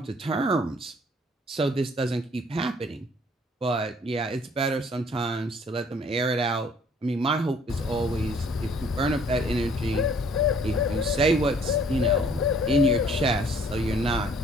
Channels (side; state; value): both; normal; correlation 0.58